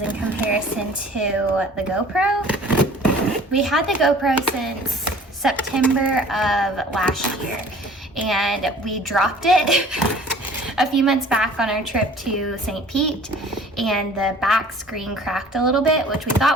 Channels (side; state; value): both; normal; correlation 0.49